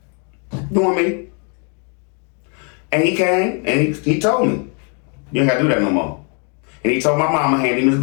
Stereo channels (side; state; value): right; quieter; 38.0 dB